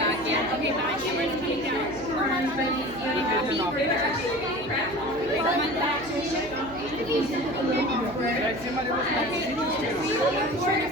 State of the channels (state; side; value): noise; right; hum, 18 dB below the sound